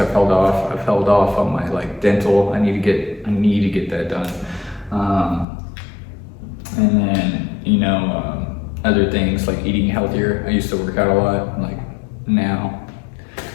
held off on my like dental. I need to get that done. And then, other things like eating healthier. I used to work out a lot, like now.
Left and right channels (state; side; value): drops out; right; at 5.5 s